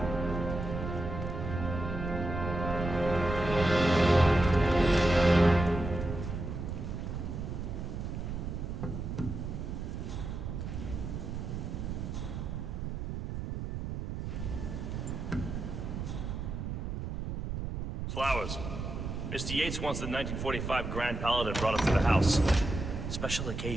Flowers. Mr. Yates wants the 1945 Grand Paladin brought up to the house. Special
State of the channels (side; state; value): right; noise; rumble, 4 dB below the sound